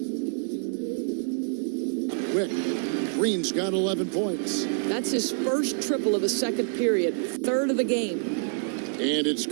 Quick, Green's got 11 points. That's his first triple of the second period, third of the game. And it's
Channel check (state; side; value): silent; left; 60 dB below the other